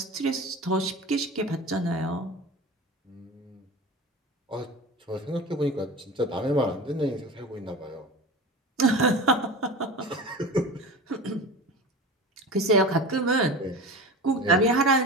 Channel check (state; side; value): normal; both; correlation 0.32